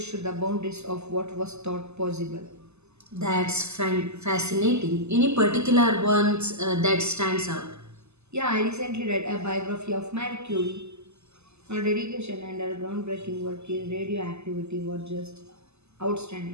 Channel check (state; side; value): late; left; 0.80 ms